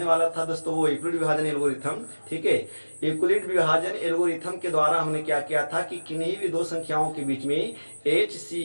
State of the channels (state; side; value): inverted; both; correlation -1.00